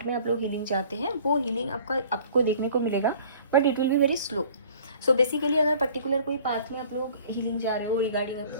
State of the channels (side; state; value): both; inverted; correlation -0.51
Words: में आप लोग हीलिंग चाहते हैं, वो हीलिंग आपको देखने को मिलेगा, but it will be very slow. So basically अगर पर्टिकुलर कोई पाथ में आप लोग हीलिंग जा रहे हो, रिगार्डिंग